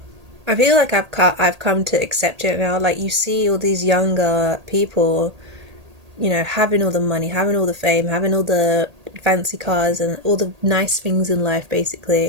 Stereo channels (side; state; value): left; late; 1.8 ms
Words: I feel like I've come to accept it now. Like, you see all these younger people, you know, having all the money, having all the fame, having all the fancy cars and all the nice things in life,